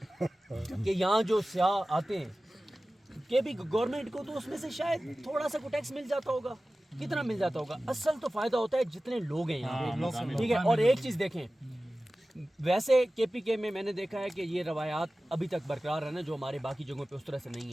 کہ یہاں جو سیاح آتے ہیں کہ بھی گورنمنٹ کو تو اس میں سے شاید تھوڑا سا کو ٹیکس مل جاتا ہوگا. کتنا مل جاتا ہوگا؟ اصل تو فائدہ ہوتا ہے جتنے لوگ ہیں یہاں پہ، ٹھیک ہے. اور ایک چیز دیکھیں، ویسے کے پی کے میں نے دیکھا ہے کہ یہ روایات ابھی تک برقرار ہے نا، جو ہمارے باقی جگہوں پہ اس طرح سے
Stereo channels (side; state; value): both; normal; correlation 0.96